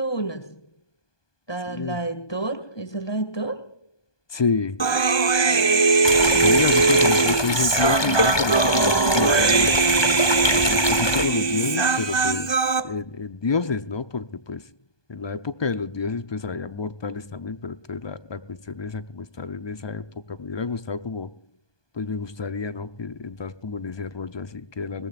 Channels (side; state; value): right; late; 1.2 ms